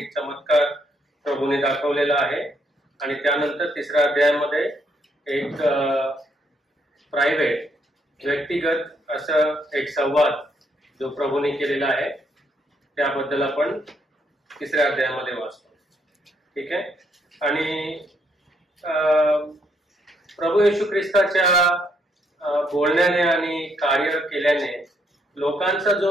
चमत्कार प्रभूने दाखवलेला आहे. आणि त्यानंतर तिसऱ्या अध्यायामध्ये एक प्रायव्हेट, व्यक्तिगत असं एक संवाद जो प्रभूने केलेला आहे त्याबद्दल आपण तिसऱ्या अध्यायामध्ये वाचतो. ठीक आहे. आणि प्रभू येशू ख्रिस्ताच्या बोलण्याने आणि कार्य केल्याने लोकांचा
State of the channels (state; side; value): normal; both; correlation 0.73